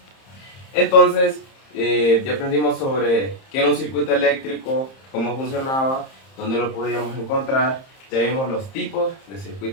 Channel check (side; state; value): right; late; 30 ms